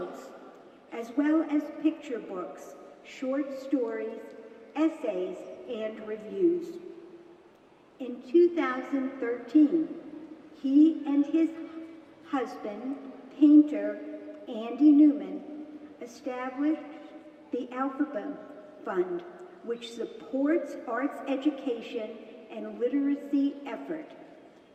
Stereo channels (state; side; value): identical; both; correlation 1.00